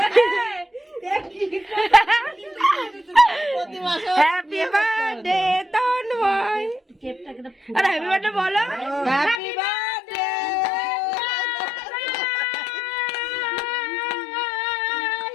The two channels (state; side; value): drops out; right; at 9.4 s